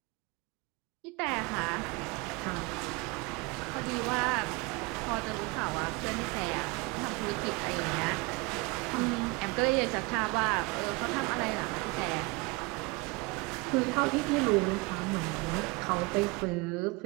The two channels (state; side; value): quieter; left; 26.1 dB